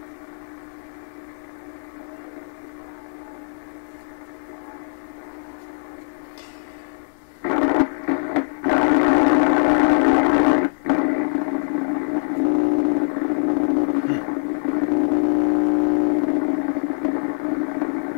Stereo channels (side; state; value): right; silent; digital silence